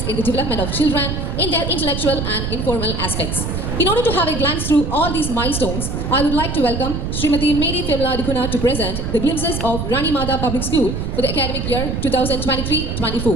in the development of children in their intellectual and informal aspects. In order to have a glance through all these milestones, I would like to welcome Srimati Mary Fimla Dikuna to present the glimpses of Rani Mata Public School for the academic year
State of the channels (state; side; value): noise; right; rumble, 3 dB below the sound